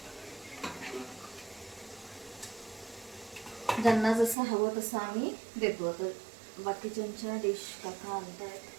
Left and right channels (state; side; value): drops out; left; at 4.4 s